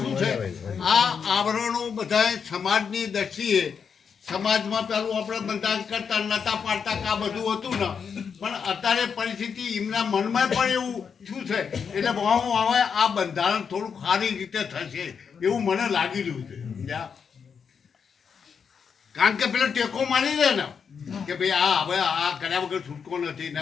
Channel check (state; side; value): quieter; right; 6.5 dB